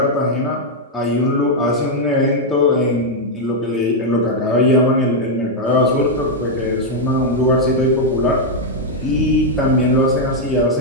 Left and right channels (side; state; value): both; normal; correlation -0.02